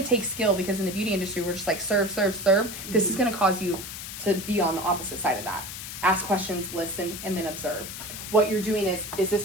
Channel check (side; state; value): left; noise; hiss, 9 dB below the sound